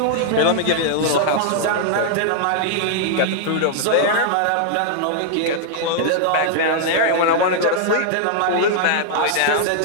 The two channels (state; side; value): different; both; correlation -0.01